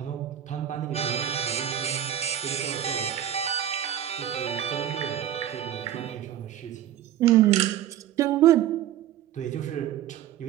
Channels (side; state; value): left; quieter; 11.2 dB